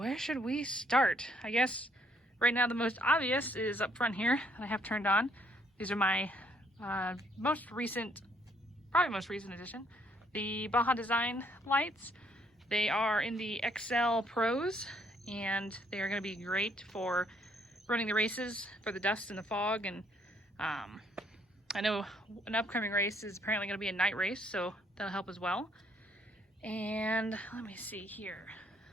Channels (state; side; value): normal; both; correlation 0.67